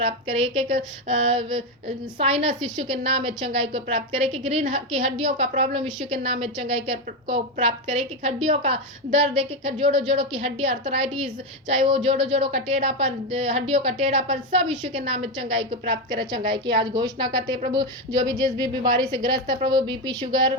करे, एक एक साइनस यीशु के नाम में चंगाई को प्राप्त करे, एक एक रीढ़ की हड्डियों का प्रॉब्लम यीशु के नाम में चंगाई को प्राप्त करे, एक एक हड्डियों का दर्द, एक एक जोड़ों की हड्डी अर्थराइटिस, चाहे वो जोड़ों का टेढ़ापन, हड्डियों का टेढ़ापन, सब यीशु के नाम में चंगाई को प्राप्त करे, चंगाई की आज घोषणा करते हैं प्रभु। जो भी जिस भी बीमारी से ग्रस्त है प्रभु, बीपी, शुगर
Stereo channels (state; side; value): normal; both; correlation 0.10